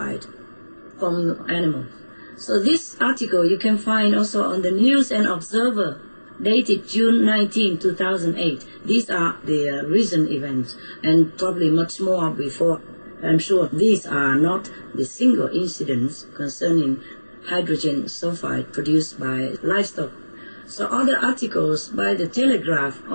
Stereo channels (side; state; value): both; inverted; correlation -1.00